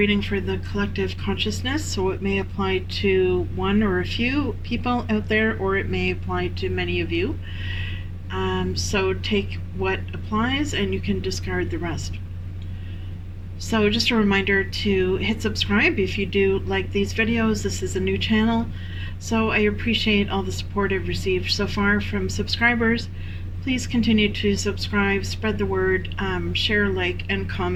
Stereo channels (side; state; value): both; identical; correlation 1.00